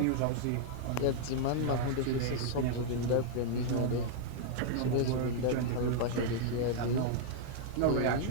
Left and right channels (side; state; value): both; different; correlation -0.01